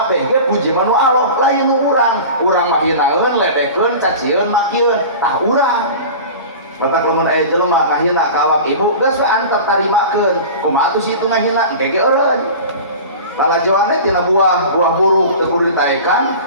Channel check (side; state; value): both; inverted; correlation -0.35